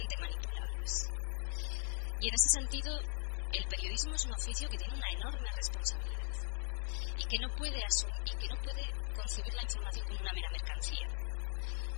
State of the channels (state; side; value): silent; right; digital silence